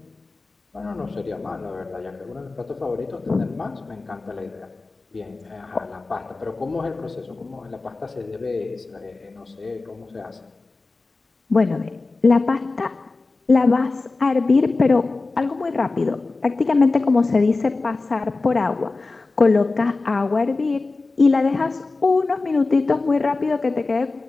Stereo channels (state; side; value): quieter; right; 3.6 dB